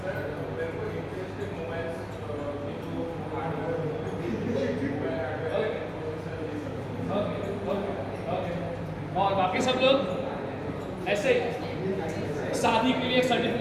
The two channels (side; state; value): both; identical; correlation 1.00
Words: और बाकी सब लोग ऐसे ही, शादी के लिए एक